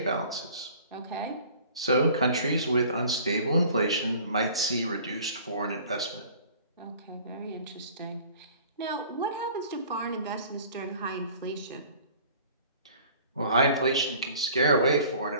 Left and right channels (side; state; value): both; inverted; correlation -0.49